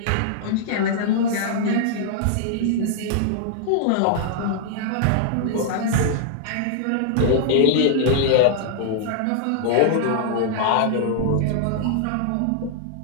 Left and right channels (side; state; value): both; different; correlation -0.01